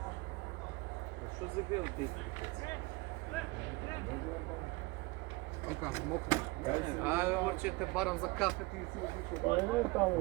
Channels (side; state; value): left; quieter; 23.6 dB